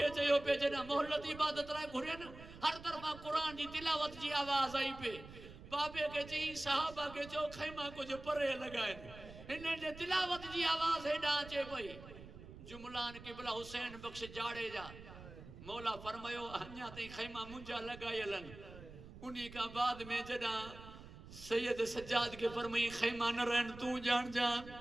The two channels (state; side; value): noise; right; rumble, 15 dB below the sound